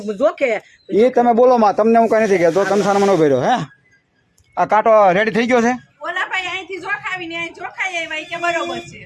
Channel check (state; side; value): identical; both; correlation 1.00